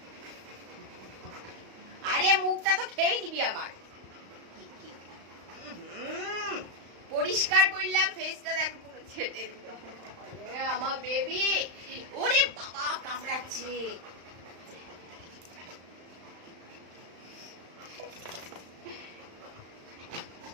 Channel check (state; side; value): late; left; 35 ms